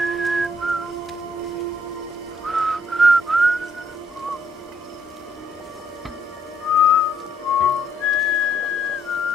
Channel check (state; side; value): normal; both; correlation 0.70